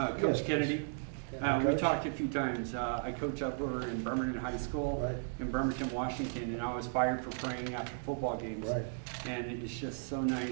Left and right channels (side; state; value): left; silent; digital silence